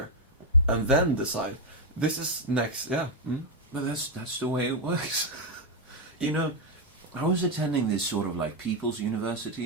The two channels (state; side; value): normal; both; correlation 0.02